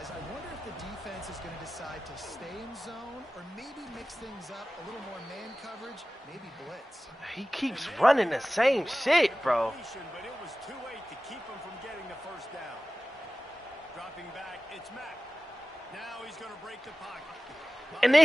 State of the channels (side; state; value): both; normal; correlation 0.96